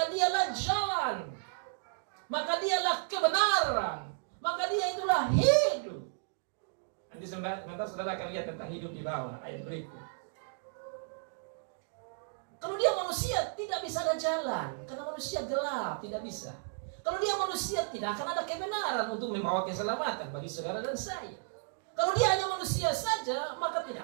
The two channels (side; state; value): left; silent; digital silence